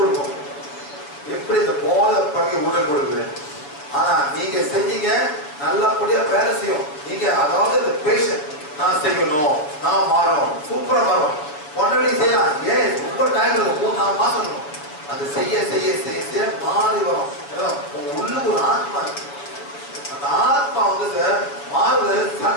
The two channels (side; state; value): right; late; 6.9 ms